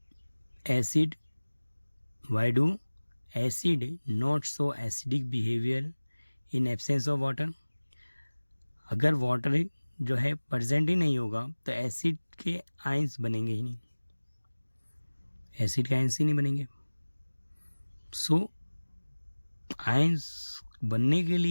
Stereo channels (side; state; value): both; inverted; correlation -1.00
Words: acid not show acidic behavior in absence of water? अगर वाटर जो है प्रेजेंट ही नहीं होगा तो एसिड के आयंस बनेंगे ही नहीं, एसिड के आयंस ही नहीं बनेंगे. सो आयंस बनने के